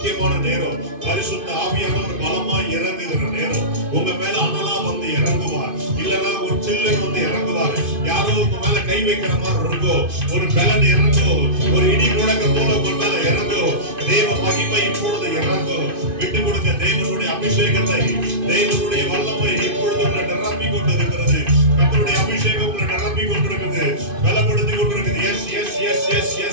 நேரம் பரிசுத்த ஆவியானவர் பலமாய் இறங்குகிற நேரம். உங்க மேல அனலா வந்து இறங்குவார், இல்லன்னா ஒரு சில்லு வந்து இறங்குவார். யாரோ உங்க மேல கை வைக்கிற மாதிரி இருக்கும். ஒரு பலன் இறங்கும், ஒரு இடி முழக்கம் போல உங்க மேல இறங்கும். தேவ மகிமை இப்பொழுது இறங்கும். விட்டு கொடுங்க. தேவனுடைய அபிஷேகத்தை, தேவனுடைய வல்லமை இப்பொழுது உங்களை நிரப்பி கொண்டிருக்கிறது. கர்த்தருடைய அபிஷேகம் உங்களை நிரப்பி கொண்டிருக்கிறது, பலப்படுத்தி கொண்டிருக்கிறது. Yes yes yes yes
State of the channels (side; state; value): left; late; 2.5 ms